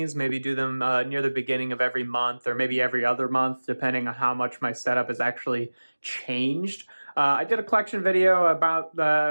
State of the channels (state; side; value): inverted; both; correlation -1.00